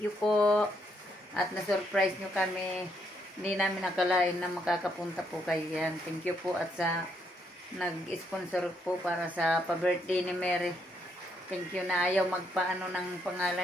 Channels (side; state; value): both; normal; correlation 0.75